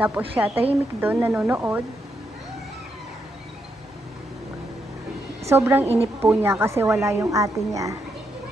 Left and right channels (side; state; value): both; normal; correlation 0.80